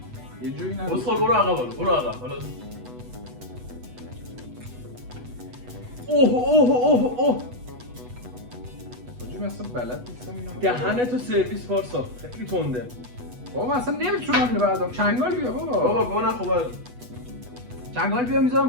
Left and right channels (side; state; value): left; late; 8.1 ms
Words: یه جوری نگو بسخال برو عقب حالا اوه حاجی من اصلا بلد نیستم اینو دهنتو سرویس پارسا خیلی تنده. بابا اصلا نمیتونم اینو بردارم چنگال بیا بابا بابا نخوبه چنگال بیا میذارم